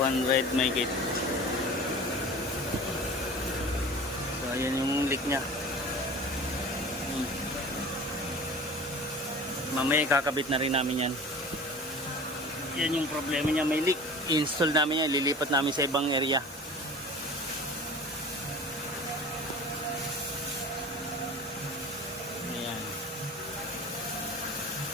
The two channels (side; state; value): both; normal; correlation 0.38